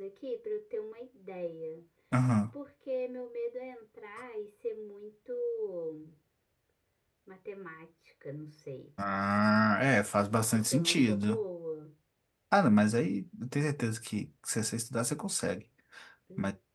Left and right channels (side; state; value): both; identical; correlation 1.00